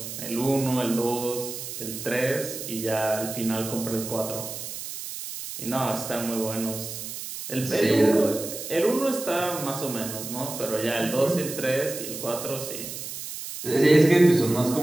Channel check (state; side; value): noise; right; hiss, 8 dB below the sound